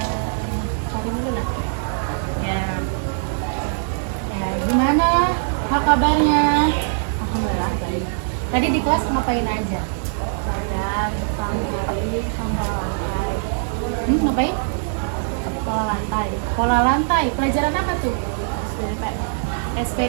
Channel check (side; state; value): left; silent; digital silence